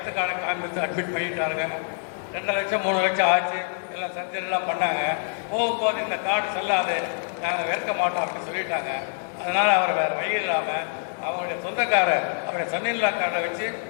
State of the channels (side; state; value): right; silent; 61 dB below the other